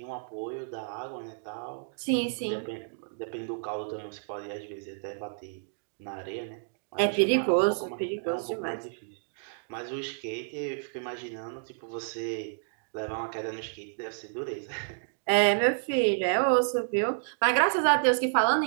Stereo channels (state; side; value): silent; left; digital silence